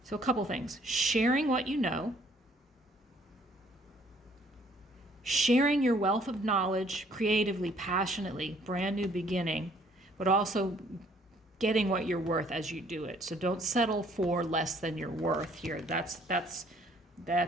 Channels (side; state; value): both; normal; correlation 0.61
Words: So a couple things. Sharing what you know. Sharing your wealth of knowledge creatively, passionately, brand new beginning, but also getting what you're worth as you do it. So don't settle for less than you're worth here. That's